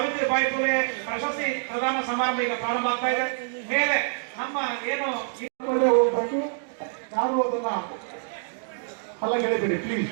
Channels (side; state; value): left; silent; digital silence